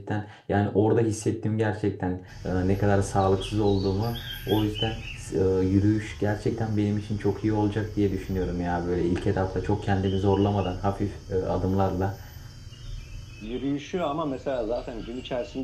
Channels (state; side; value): identical; both; correlation 1.00